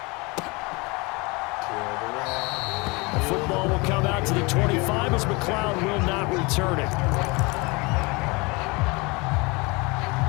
The football will come out to the 25 as McLeod will not return it.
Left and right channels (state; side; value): quieter; right; 26.7 dB